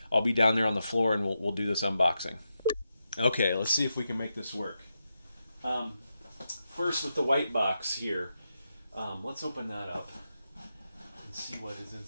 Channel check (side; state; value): both; inverted; correlation -0.87